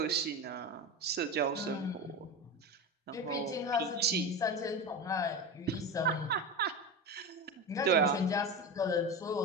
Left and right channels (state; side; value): normal; both; correlation 0.23